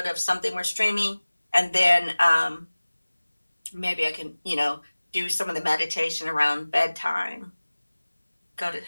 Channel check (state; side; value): inverted; both; correlation -1.00